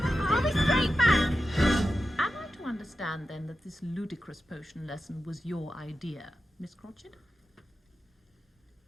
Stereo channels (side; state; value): both; normal; correlation 0.91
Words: I'll be straight back. Am I to understand, then, that this ludicrous potion lesson was your idea, Miss Cratchit?